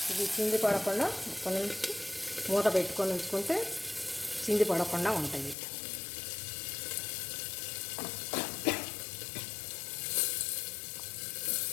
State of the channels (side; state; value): right; drops out; at 5.6 s